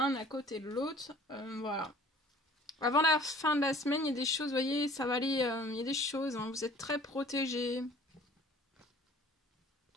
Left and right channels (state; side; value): normal; both; correlation 0.50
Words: à côté de l'autre. Voilà. Avant la fin de la semaine, il y a des choses, vous voyez, ça va aller, il y a des choses, vous êtes très protégés